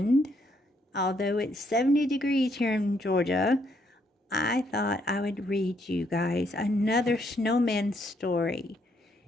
although it's 70 degrees here in Georgia, I thought I would read you guys another snowman story.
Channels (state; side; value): normal; both; correlation 0.72